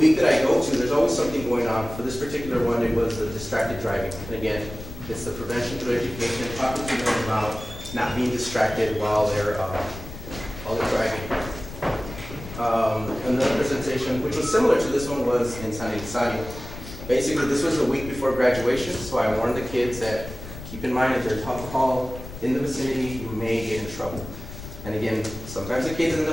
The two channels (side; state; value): left; noise; rumble, 12 dB below the sound